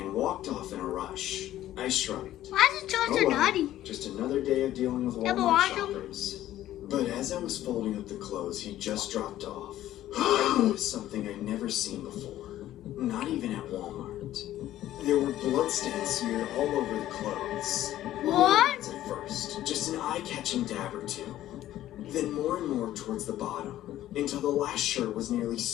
walked off in a rush. I shrugged. Why is it so Oh well, naughty? just another day of dealing with Yeah, but Walmart why don't- shoppers. But as I was folding up the clothes he just dropped off, I noticed something I'd never seen before. Not even at Walmart. There were bloodstains smeared all over the clothes. What? At first, just an eye-catching dab or two. Then more and more towards the bottom. until the last shirt was nearly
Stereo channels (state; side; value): quieter; right; 13.5 dB